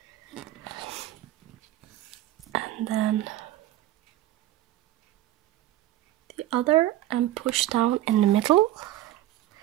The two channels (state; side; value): quieter; left; 14.2 dB